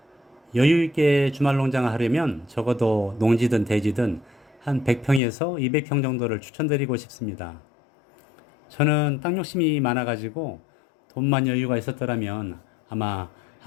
여유 있게 주말 농장을 하려면 적어도 농지든 대지든 한 100평에서 200평 정도를 추천드리고 싶습니다. 저는 땅 욕심이 많아가지고 돈만 여유가 있었더라면 아마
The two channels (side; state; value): right; drops out; at 5.2 s